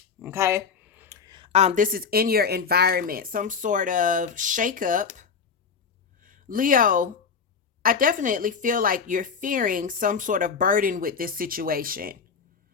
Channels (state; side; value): quieter; right; 5.9 dB